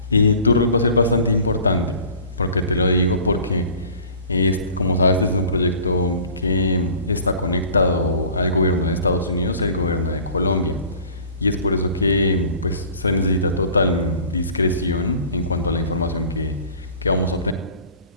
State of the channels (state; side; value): inverted; both; correlation -0.46